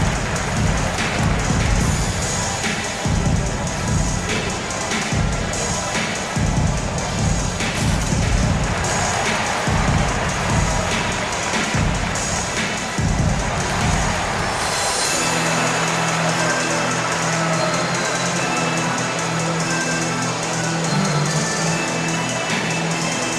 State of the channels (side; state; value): both; identical; correlation 1.00